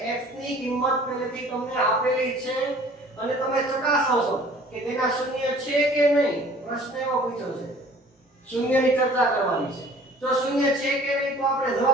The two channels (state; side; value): normal; both; correlation 0.50